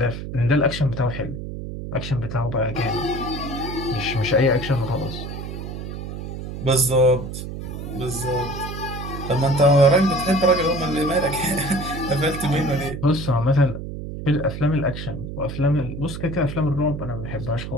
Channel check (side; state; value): right; noise; hum, 8 dB below the sound